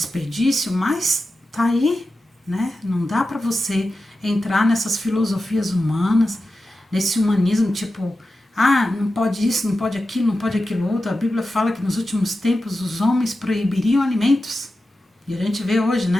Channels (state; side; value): normal; both; correlation 0.92